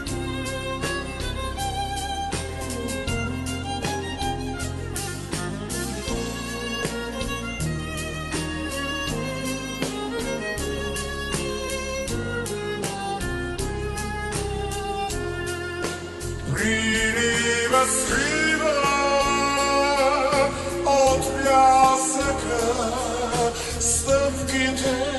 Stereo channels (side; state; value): both; identical; correlation 1.00